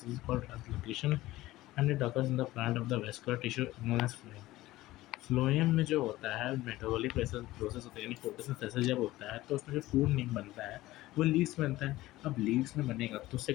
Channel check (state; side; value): quieter; right; 17.1 dB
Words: is called translocation, and it occurs in the plant of the vascular tissue known as phloem. Phloem में जो होता है metabolic process होता है, यानी photosynthesis जब होता है तो उसमें जो फूड नहीं बनता है वो लीव्स बनता है। अब लीव्स में बनेगा तो